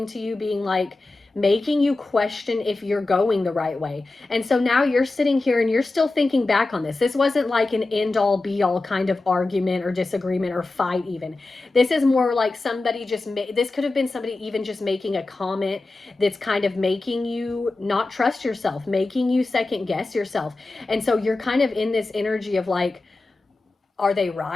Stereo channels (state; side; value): quieter; right; 3.2 dB